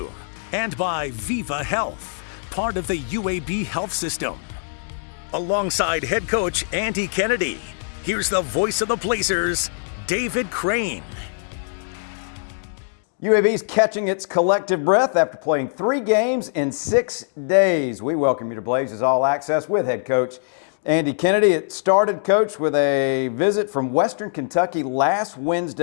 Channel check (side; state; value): right; silent; digital silence